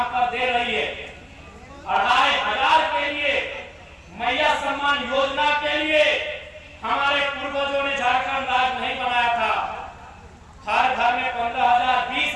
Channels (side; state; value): both; identical; correlation 1.00